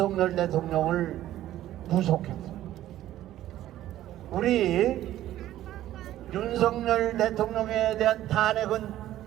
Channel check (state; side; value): quieter; left; 13.5 dB